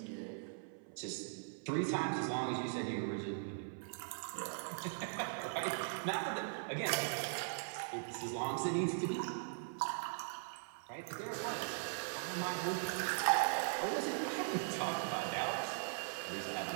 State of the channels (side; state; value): left; silent; 51 dB below the other